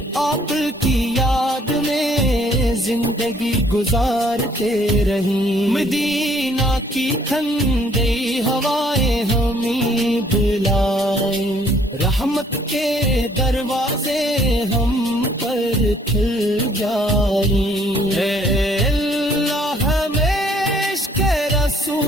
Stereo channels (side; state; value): both; normal; correlation 0.63